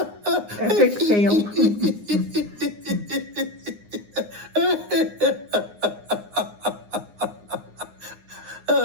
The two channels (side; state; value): left; late; 9.7 ms